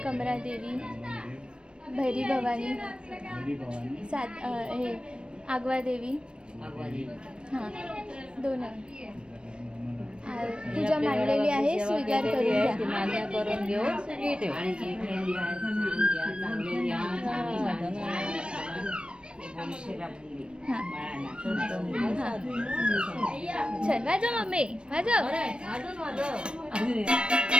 कमरा देवी, भैरी भवानी, हे आगवा देवी. हा दोन पूजा मांडलेली आहे, स्वीकार करून घ्या. मान्य करून घेऊन सगळी ठेव. चल वाजव मम्मी वाजव.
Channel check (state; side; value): late; left; 0.056 ms